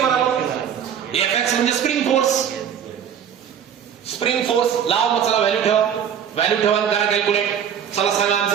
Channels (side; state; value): left; quieter; 8.6 dB